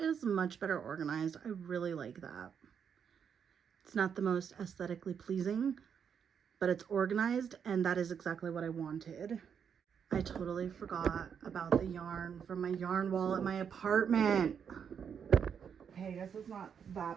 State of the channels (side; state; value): left; quieter; 7.4 dB